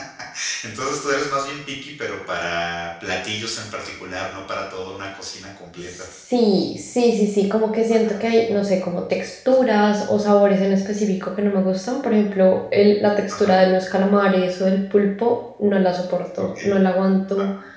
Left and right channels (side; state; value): both; identical; correlation 1.00